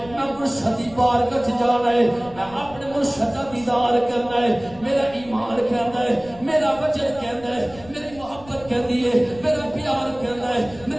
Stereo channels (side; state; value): left; noise; rumble, 20 dB below the sound